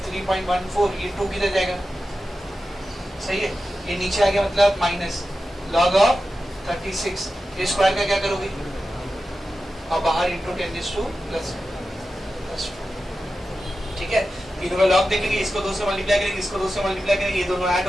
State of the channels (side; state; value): both; normal; correlation 0.92